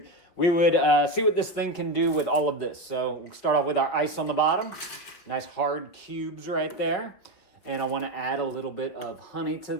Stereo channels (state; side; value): late; right; 5.8 ms